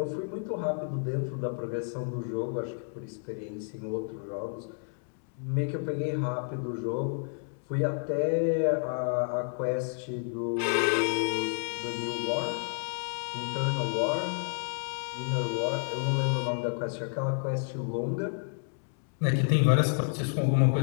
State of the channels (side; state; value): right; silent; 58 dB below the other